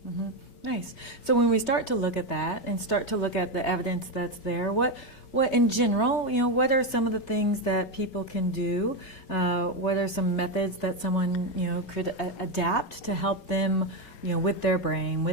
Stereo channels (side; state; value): right; late; 5.3 ms